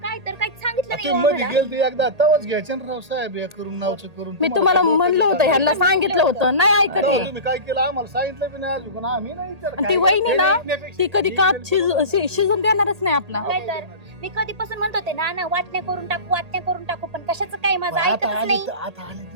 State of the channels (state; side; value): late; left; 1.8 ms